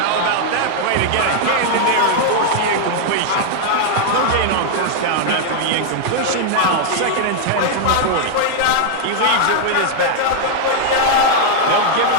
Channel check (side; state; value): both; different; correlation -0.01